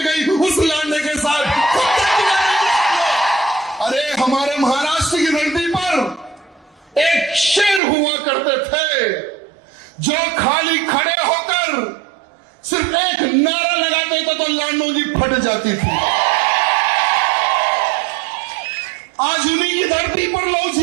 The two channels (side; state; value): left; drops out; at 7.8 s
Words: गई उस लांडे के साथ? कब तक? अरे हमारे महाराष्ट्र की धरती पर एक शेर हुआ करते थे जो खाली खड़े होकर सिर्फ एक नारा लगाते थे तो लांडों की फट जाती थी। आज उन्हीं की धरती पर लव